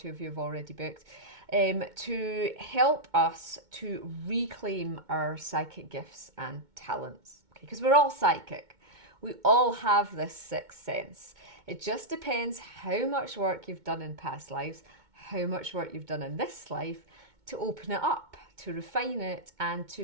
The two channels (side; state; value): left; late; 2.2 ms